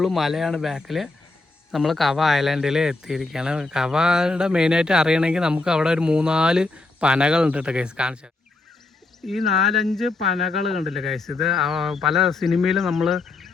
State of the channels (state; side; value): quieter; right; 3.3 dB